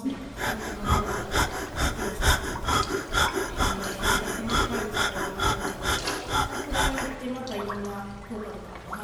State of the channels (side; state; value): both; identical; correlation 1.00